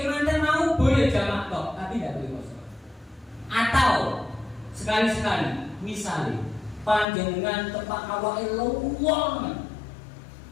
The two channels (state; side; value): drops out; right; at 7.1 s